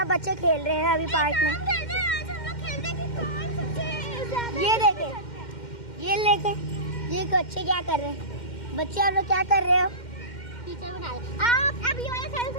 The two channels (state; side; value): late; right; 2.1 ms